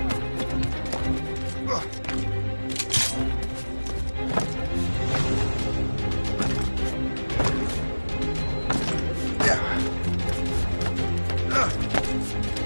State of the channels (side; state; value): both; inverted; correlation -1.00